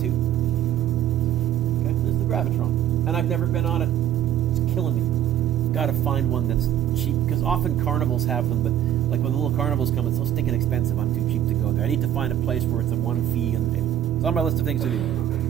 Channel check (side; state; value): left; quieter; 11.2 dB